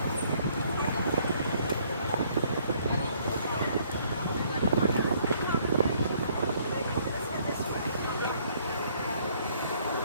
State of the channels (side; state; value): both; inverted; correlation -0.64